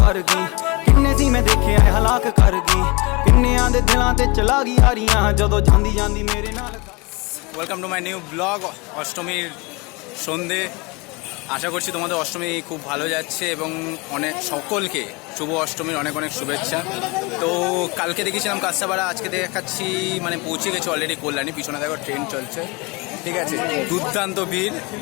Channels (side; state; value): right; quieter; 26.8 dB